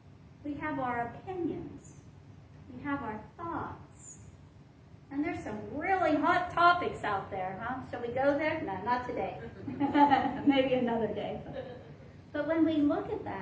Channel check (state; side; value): identical; both; correlation 1.00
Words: We have our opinions. We have our thoughts. And there's some really hot topics out there, huh? Shall we go there? No, not today. Maybe another day. But when we look at